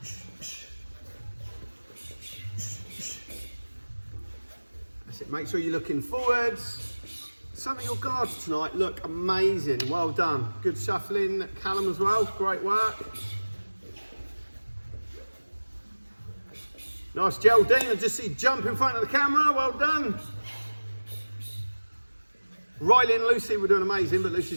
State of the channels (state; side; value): inverted; both; correlation -1.00